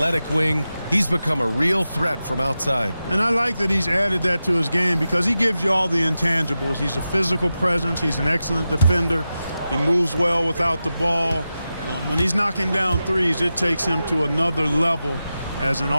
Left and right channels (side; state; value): both; inverted; correlation -0.92